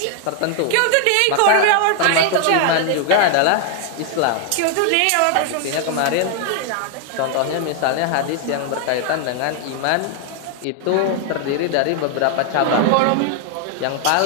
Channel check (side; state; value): both; different; correlation 0.00